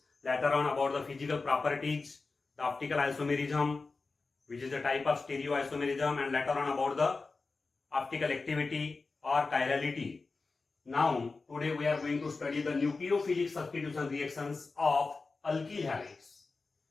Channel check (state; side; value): quieter; right; 4.0 dB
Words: later on about the physical properties, the optical isomerism, which is a type of stereoisomerism, and later on about the optical activity or chirality. Now, today we are going to study the nucleophilic substitution reactions of alkyl halides.